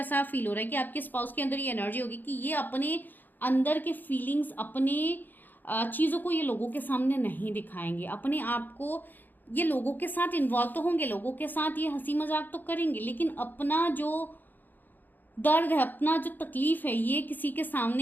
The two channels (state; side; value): late; right; 0.088 ms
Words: फील हो रहा है कि आपके स्पाउस के अंदर ये एनर्जी होगी कि ये अपने अंदर के फीलिंग्स, अपने चीज़ों को ये लोगों के सामने नहीं दिखाएंगे। अपने आप को ये लोगों के साथ इन्वॉल्व तो होंगे, लोगों के साथ ये हंसी मजाक तो करेंगे, लेकिन अपना जो दर्द है, अपना जो तकलीफ है, ये किसी के